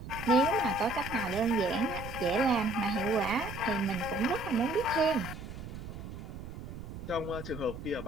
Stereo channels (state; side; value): noise; right; rumble, 10 dB below the sound